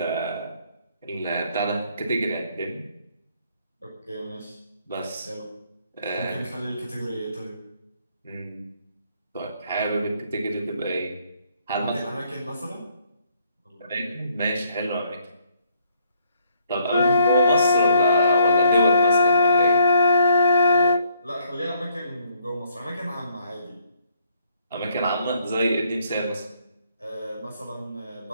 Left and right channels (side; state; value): both; inverted; correlation -0.67